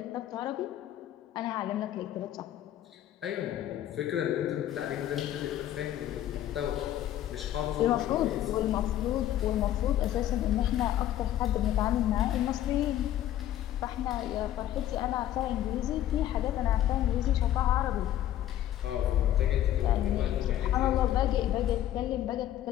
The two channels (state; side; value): quieter; right; 12.3 dB